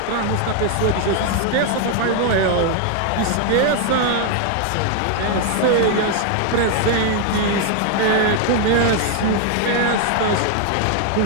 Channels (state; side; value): different; both; correlation 0.00